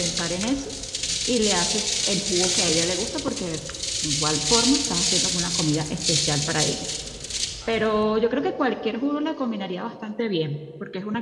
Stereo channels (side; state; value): both; identical; correlation 1.00